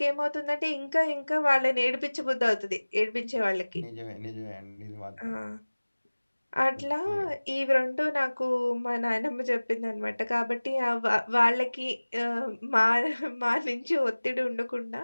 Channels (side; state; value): both; inverted; correlation -1.00